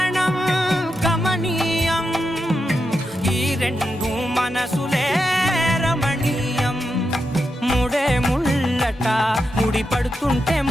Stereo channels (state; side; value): normal; both; correlation 0.86